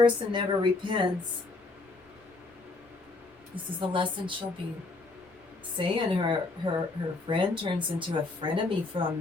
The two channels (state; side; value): quieter; right; 3.4 dB